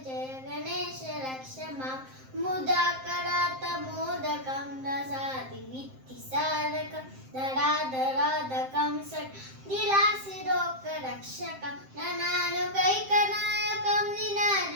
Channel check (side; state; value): left; late; 7.6 ms